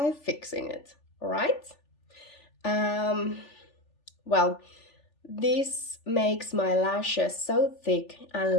fixing it, right? Well, this makes my lashes so thick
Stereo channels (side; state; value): right; late; 3.4 ms